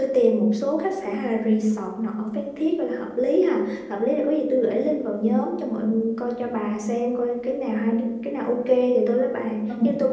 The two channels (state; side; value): identical; both; correlation 1.00